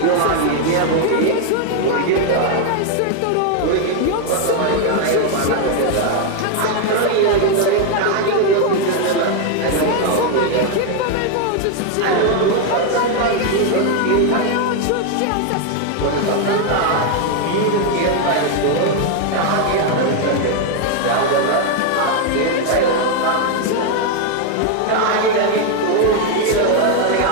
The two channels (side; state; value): both; different; correlation 0.01